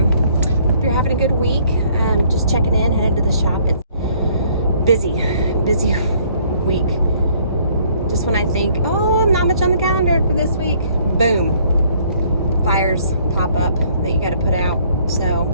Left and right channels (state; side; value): inverted; both; correlation -0.62